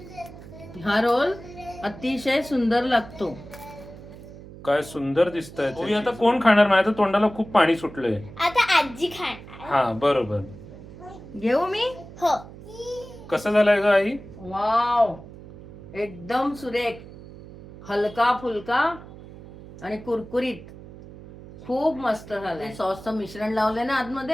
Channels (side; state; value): right; noise; hum, 16 dB below the sound